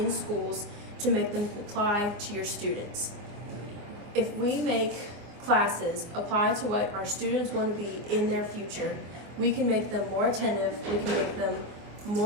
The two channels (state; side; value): late; left; 24 ms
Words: schools to make them apply to your students. If we make classes apply to what our students want to be in their future, we can make them more attentive, we can make them